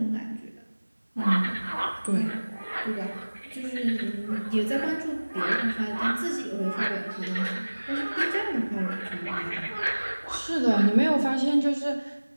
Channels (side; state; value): both; inverted; correlation -1.00